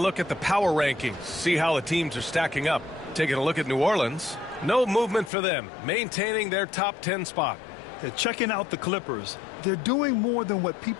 at the power rankings, see how the teams are stacking up. Taking a look at New Orleans, no movement for them, maintaining their top 10 spot. They're checking out the Clippers. They're doing more than what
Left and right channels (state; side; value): drops out; right; at 5.3 s